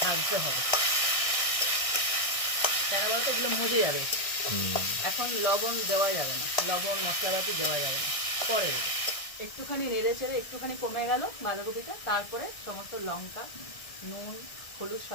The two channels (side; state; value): right; late; 1.6 ms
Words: ভাজতে হবে, কেন বলতো এগুলো মজে যাবে। এখন লবণ দেওয়া যাবে না, লবণ মশলাপাতি দেওয়া যাবে না, পরে দেবে। একটুখানি নেড়ে চেড়ে একটুখানি কমে গেল বাঁধাকপিটা, তারপরে সমস্ত লঙ্কা, নুন, হলুদ